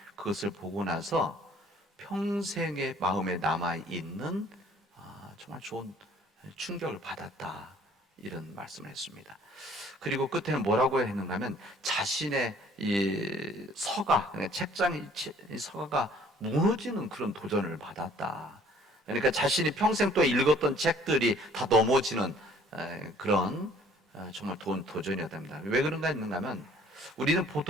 그것을 보고 나서 평생의 마음에 남아 있는 정말 좋은 충격을 받았다, 이런 말씀을 했습니다. 그리고 끝에는 뭐라고 했는가 하면 자신의 이 서가, 책장이 서가가 무너지는 그런 도전을 받았다. 그러니까 자신이 평생 또 읽었던 책들이 다 넘어지는 그런 정말 도전이었다 합니다. 왜 그런가 했는가 하면 우리는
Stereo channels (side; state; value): both; normal; correlation 0.56